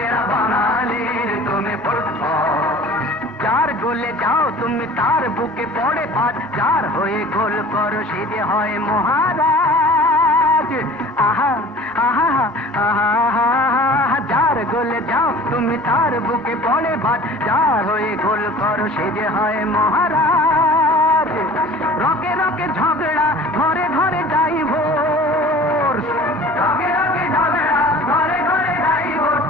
বাঙালির তুমি ফুটবল। যার গোলে যাও তুমি তার বুকে পড়ে ভাত, যার হয়ে গোল করো সে যে হয় মহারাজ। আহা আহা আহা আহা, যার গোলে যাও তুমি তার বুকে পড়ে ভাত, যার হয়ে গোল করো সে যে হয় মহারাজ। রকে রকে ঝগড়া ঘরে ঘরে ডাইভোর্স, রকে রকে ঝগড়া ঘরে ঘরে ডাইভোর্স,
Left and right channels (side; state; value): both; normal; correlation 0.44